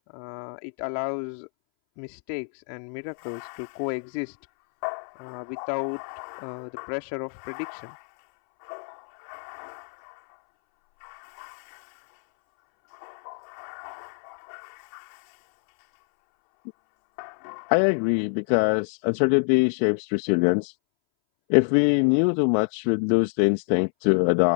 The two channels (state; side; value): silent; right; 61 dB below the other